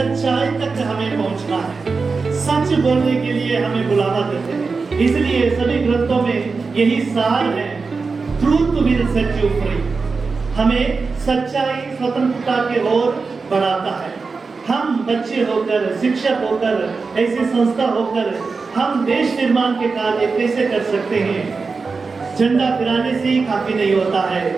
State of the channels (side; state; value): left; quieter; 4.5 dB